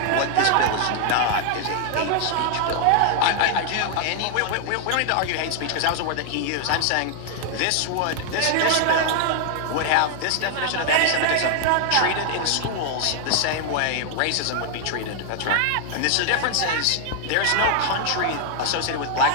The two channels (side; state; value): both; different; correlation 0.00